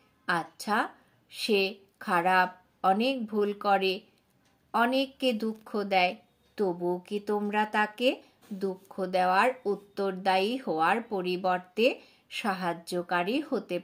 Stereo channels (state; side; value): identical; both; correlation 1.00